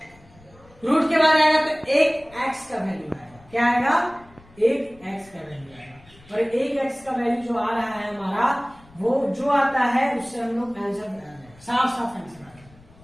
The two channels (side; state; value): left; noise; rumble, 26 dB below the sound